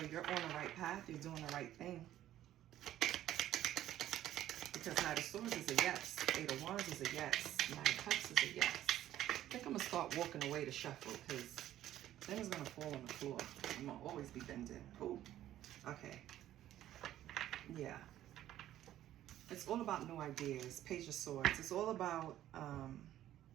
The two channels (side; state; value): left; quieter; 12.8 dB